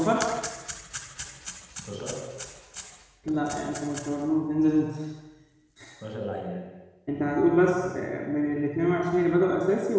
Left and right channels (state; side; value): identical; both; correlation 1.00